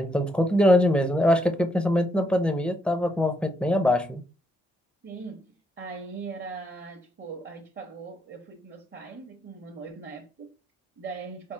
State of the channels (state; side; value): normal; both; correlation 0.77